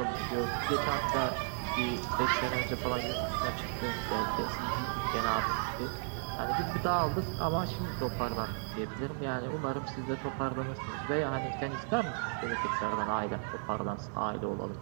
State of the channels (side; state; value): left; silent; 55 dB below the other